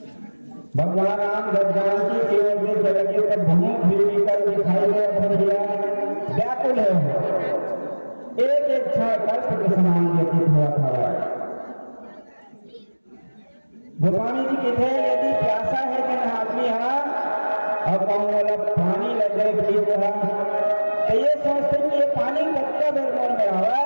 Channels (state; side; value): inverted; both; correlation -1.00